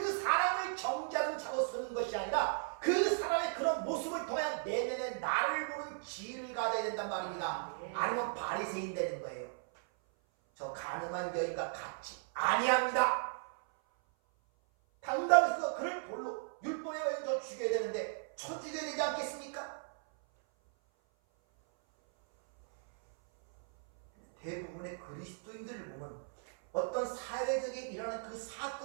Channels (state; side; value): silent; left; 54 dB below the other